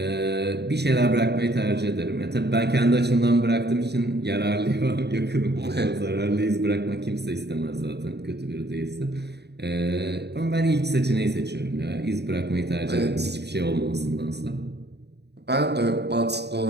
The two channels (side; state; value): left; late; 0.49 ms